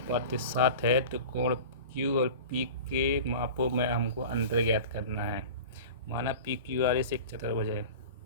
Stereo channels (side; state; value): both; inverted; correlation -0.35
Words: है तो कोण Q और P के मापों में हमको अंतर ज्ञात करना है। माना PQRS एक चतुर्भुज है,